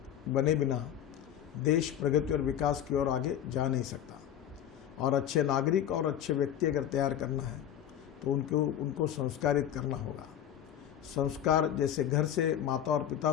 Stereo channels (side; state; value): right; quieter; 10.3 dB